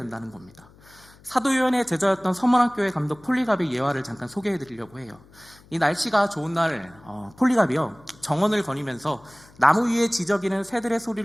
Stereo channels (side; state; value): left; noise; hum, 26 dB below the sound